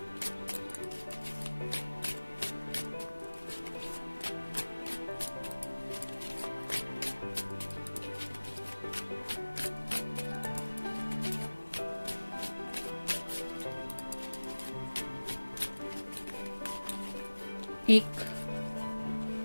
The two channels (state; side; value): inverted; both; correlation -1.00